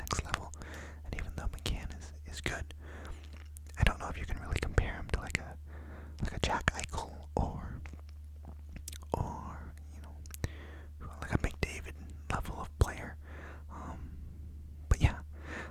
level. And even though McCann is good, I don't know if you can really compare him to like a Jack Eichel or like a McDavid level of player. But yeah,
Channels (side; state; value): both; identical; correlation 1.00